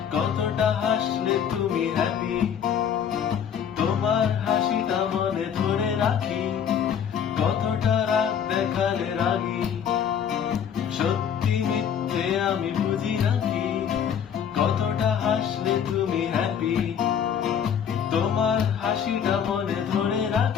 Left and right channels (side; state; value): right; quieter; 8.2 dB